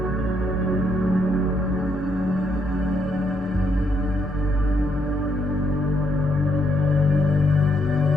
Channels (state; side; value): normal; both; correlation 0.74